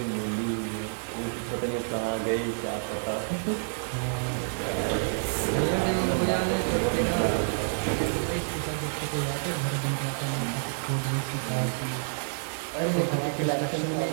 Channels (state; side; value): silent; left; digital silence